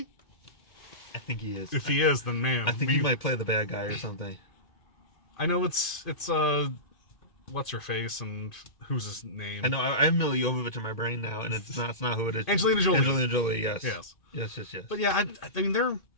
I think he is. If he is, then man, I think he might play the bad guy or something. I know it's what's her face and who's his name? I know I have Mila Jovovich in my brain now, and it's not who it is. Angelina Jolie. Angelina Jolie, yes. Yes. Yes. But yeah, I mean they're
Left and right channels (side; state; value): right; late; 2.1 ms